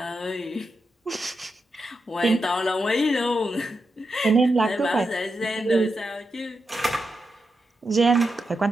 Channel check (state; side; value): normal; both; correlation 0.87